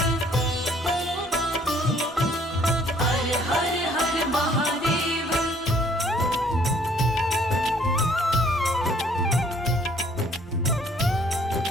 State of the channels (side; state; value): both; normal; correlation 0.61